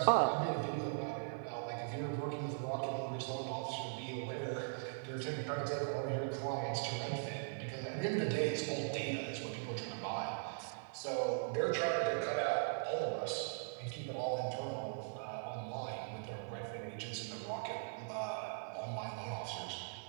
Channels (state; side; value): silent; left; 51 dB below the other